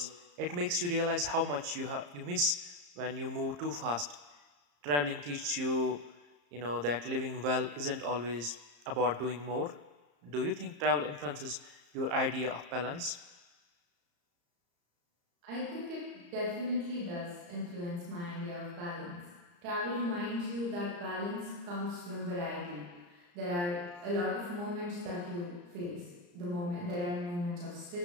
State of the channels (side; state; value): left; late; 34 ms